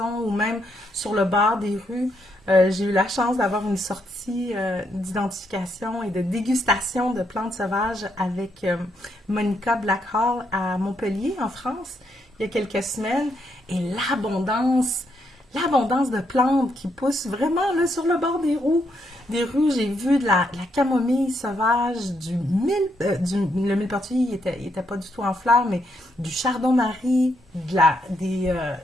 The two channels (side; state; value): both; normal; correlation 0.77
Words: ou même sur le bord des rues. J'ai eu la chance d'avoir une sortie d'identification et de dégustation de plantes sauvages avec Monica Blackhall à Montpellier, en France, il y a quelques semaines. Et l'abondance de plantes qui poussent vraiment là, sur le bord des rues. J'ai vu de la camomille sauvage, le millepertuis, il était pas du tout en fleurs, mais du chardon-marie,